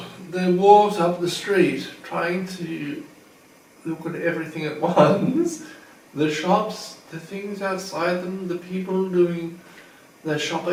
They walked up the street, trying to look at everything at once. The shops, the things outside them, the people doing their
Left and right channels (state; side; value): identical; both; correlation 1.00